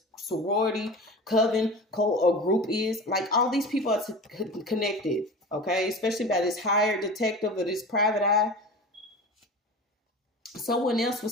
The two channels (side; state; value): both; normal; correlation 0.33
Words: sorority, coven, cult, or group is. Like, all these people are connected, okay? Especially by this hired detective or this private eye. Someone else